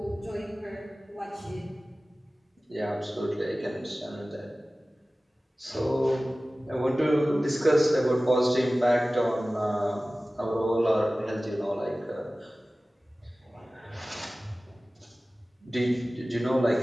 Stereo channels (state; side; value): normal; both; correlation 0.97